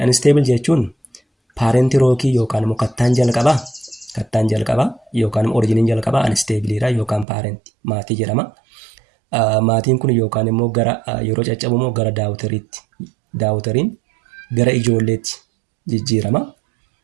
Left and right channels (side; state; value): left; drops out; at 7.2 s